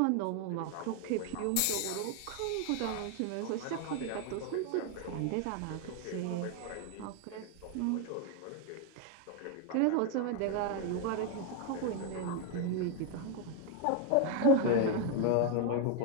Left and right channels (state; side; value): different; both; correlation 0.01